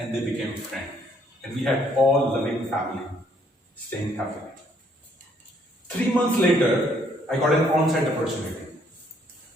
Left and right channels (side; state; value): both; normal; correlation 0.67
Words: they became friends. And we had all loving family, staying happily. 3 months later, I got an on-site opportunity.